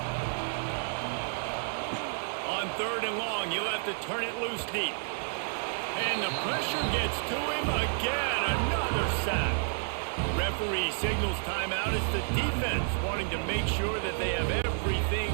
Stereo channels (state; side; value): silent; left; digital silence